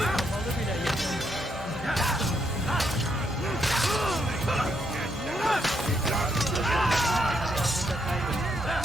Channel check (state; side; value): normal; both; correlation 0.77